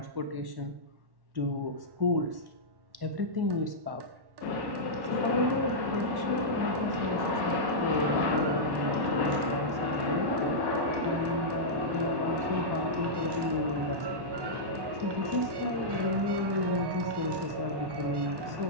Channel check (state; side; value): late; left; 1.1 ms